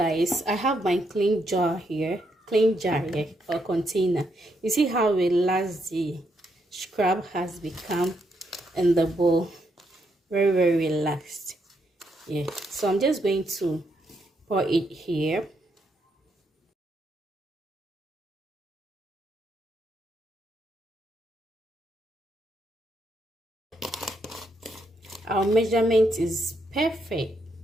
I have my clean jar here or container. You see how relaxed the scrub has become in the bowl. Very relaxed. Yeah, so I'm just going to pour it here. Our measurement is perfect.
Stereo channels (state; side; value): normal; both; correlation 0.78